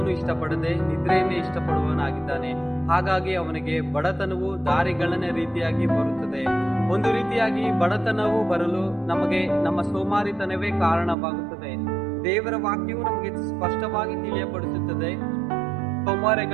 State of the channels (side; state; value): left; drops out; at 11.2 s